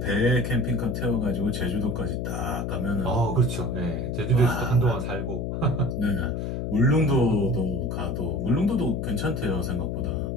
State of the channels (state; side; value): noise; left; hum, 3 dB below the sound